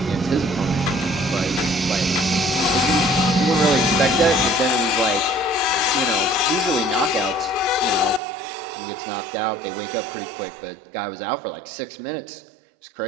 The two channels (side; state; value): left; drops out; at 8.2 s